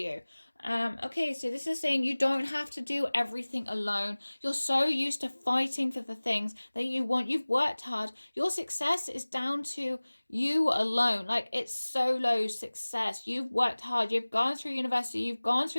Okay, so this is saying you don't have to do everything alone. You're so used to fighting for the things that you want. You've worked hard. Your success is down to you alone. Like, it's solo success. You've worked hard. You've gone through university. You've gone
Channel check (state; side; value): inverted; both; correlation -1.00